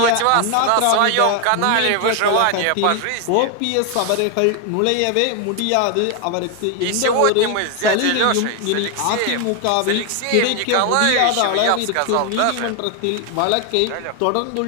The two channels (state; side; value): different; both; correlation 0.01